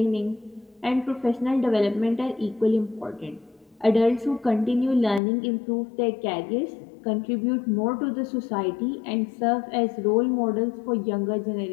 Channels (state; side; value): drops out; right; at 5.2 s